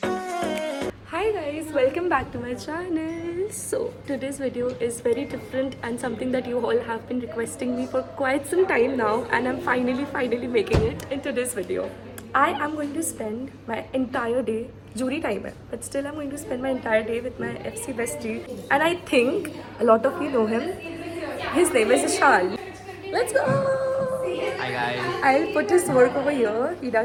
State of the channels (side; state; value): both; identical; correlation 1.00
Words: Hi guys, welcome back to my channel. So today's video is very different and something that you all have been requesting me for quite some time now, and I'm finally making it in today's video. I am going to spend my entire day, jury time hai, but still I'm going to spend my entire day with my FC bestie, and I think a lot of you know him. His name is Ishan. Let's go! Hi guys. I'll put his work over here. He